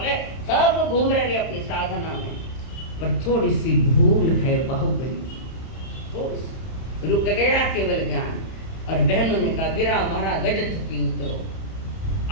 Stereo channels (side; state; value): right; late; 31 ms